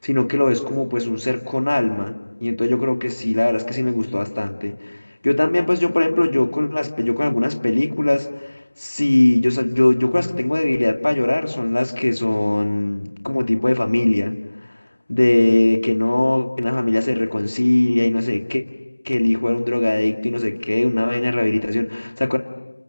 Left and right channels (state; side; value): inverted; both; correlation -1.00